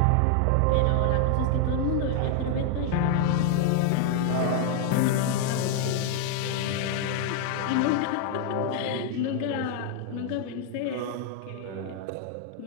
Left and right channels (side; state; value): both; different; correlation 0.00